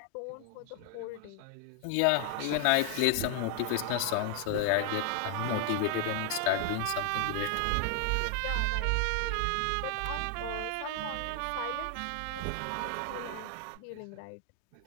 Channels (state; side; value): different; both; correlation 0.00